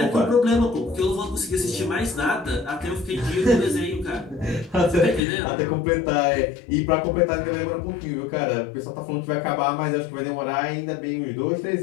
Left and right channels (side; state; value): right; drops out; at 5.2 s